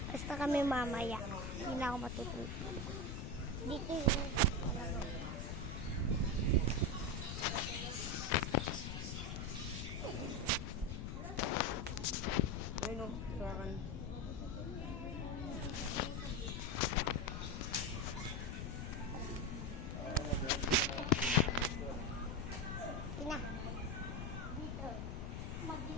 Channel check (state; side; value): noise; left; rumble, 4 dB below the sound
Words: alis na kami mamaya. Hindi na ako matutulog. Dito yun. Ayun o, surakan. Ina. Dito.